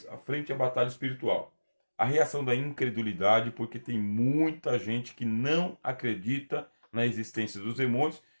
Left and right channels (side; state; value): both; inverted; correlation -1.00